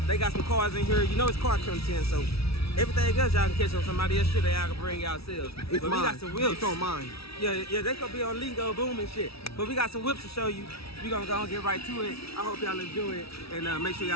They got some cars in here. You know it's car content, so everything else y'all can catch on somebody else's shit that y'all can bring yourselves. But we got some whips. It's on mine. Yeah, they could be on Lingo Boom and shit. But we got some whips to show you. We gonna go and get right to it. I hope y'all enjoy it. And make sure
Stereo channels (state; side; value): late; right; 0.76 ms